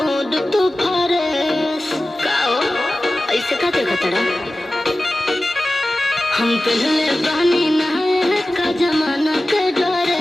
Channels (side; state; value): both; normal; correlation 0.95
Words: तू फरेस काओ ऐसे का देखा तड़ा हम पहले बहनी नहाए का जमाना के